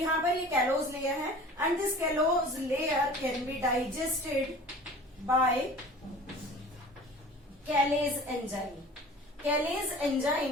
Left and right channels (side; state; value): both; normal; correlation 0.43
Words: पर ये कैलोज लेयर है and this callose layer can be digested by callase enzyme. Callase